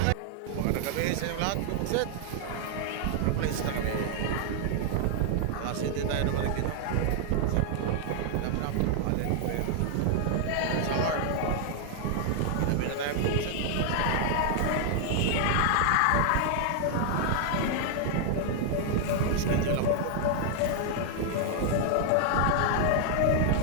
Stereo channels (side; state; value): both; different; correlation 0.00